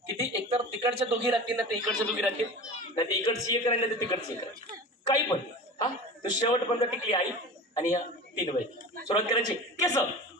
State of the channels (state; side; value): normal; both; correlation 0.34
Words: किती? एकतर तिकडच्या दोघी राहतील ना, ते इकडच्या दोघी राहतील, नाही ते इकडची एक राहिली, तर तिकडची एक राहतील, काही पण. हा तर शेवटपर्यंत टिकली आई आणि या तीन बाई. सुरुवात करायची. केस,